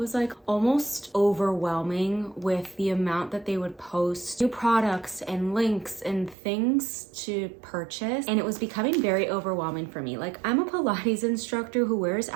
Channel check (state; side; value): drops out; left; at 6.4 s